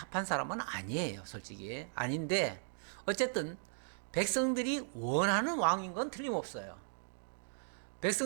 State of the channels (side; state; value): left; silent; digital silence